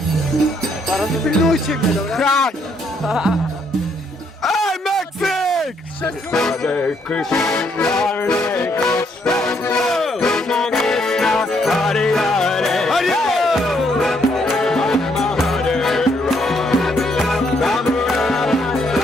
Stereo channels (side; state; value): both; normal; correlation 0.71